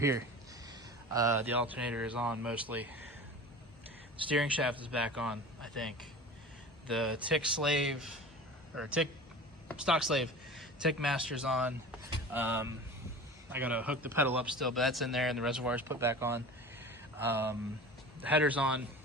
The alternator is on mostly. Steering shaft is back on, I think. The tick slave, or tick stock slave, tick master's on. I gotta hook the pedal up still, but that's in there, and the reservoir's put back on. The header's on.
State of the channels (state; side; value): normal; both; correlation 0.36